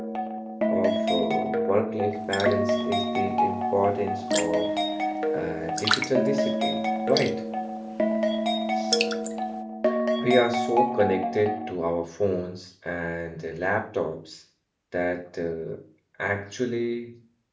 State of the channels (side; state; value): both; identical; correlation 1.00